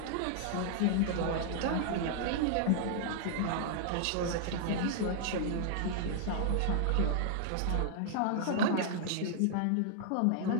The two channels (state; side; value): different; both; correlation -0.01